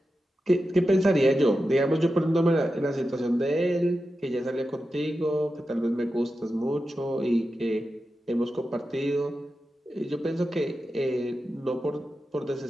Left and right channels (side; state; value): both; normal; correlation 0.91